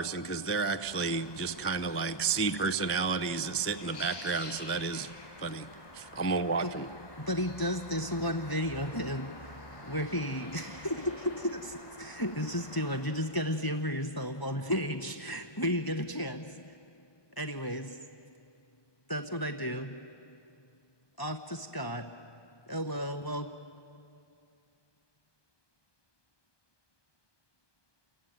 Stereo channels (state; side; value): late; right; 1.2 ms